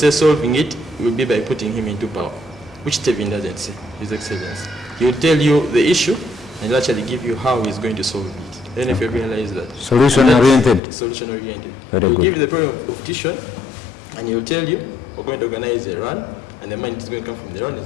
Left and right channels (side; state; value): right; drops out; at 10.8 s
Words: solving it will be by putting him into power, which Tevin doesn't say, His Excellency. He will tell you the issue, and he'll actually give you how he's going to solve it. Then if you realize that. Solution-oriented. Solution-oriented. Very He'll good. give you the problem of Dishon, and he'll tell you, we're going to organize a run, and the money is going to come from the run,